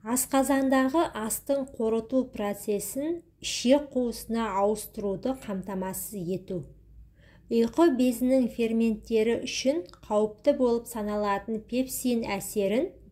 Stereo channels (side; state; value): both; identical; correlation 1.00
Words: асқазандағы астың қорыту процесін ішек қуысына ауыстыруды қамтамасыз ету, ұйқы безінің ферменттері үшін қауіпті болып саналатын пепсин әсерін